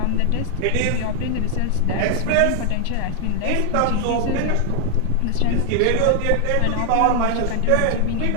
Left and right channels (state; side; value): different; both; correlation 0.00